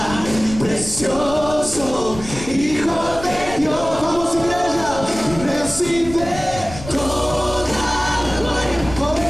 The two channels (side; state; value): left; noise; rumble, 12 dB below the sound